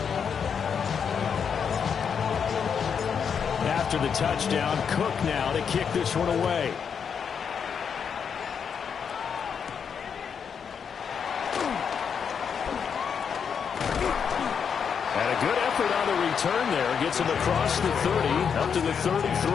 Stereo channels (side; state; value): right; quieter; 6.9 dB